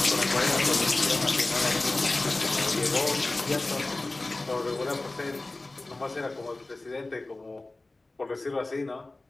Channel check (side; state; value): right; quieter; 3.0 dB